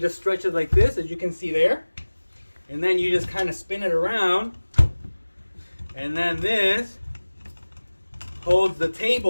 just stretch it like this, as you can see there. And then you just kind of spin it around. And then this holds the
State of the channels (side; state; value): both; inverted; correlation -1.00